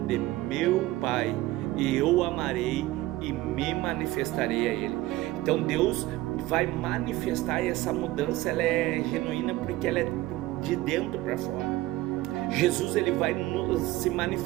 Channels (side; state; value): left; quieter; 17.4 dB